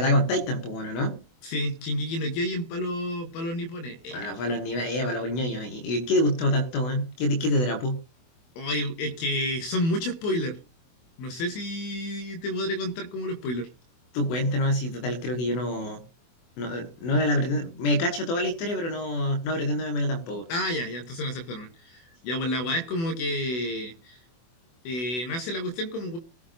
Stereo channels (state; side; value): late; right; 24 ms